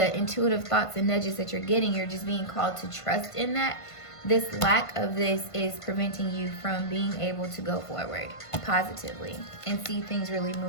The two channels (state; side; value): late; right; 1.5 ms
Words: intuitive thoughts and nudges that you're getting, you're just being called to trust in that. This lack of this is preventing you from being able to go forward positively and see things really